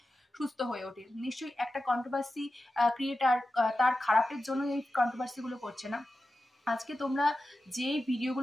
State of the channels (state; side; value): normal; both; correlation 0.92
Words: সুস্থ হয়ে ওঠে। নিশ্চয়ই একটা কন্ট্রোভার্সি ক্রিয়েটার তার খারাপের জন্য এই কন্ট্রোভার্সি গুলো করছে না। আজকে তোমরা যে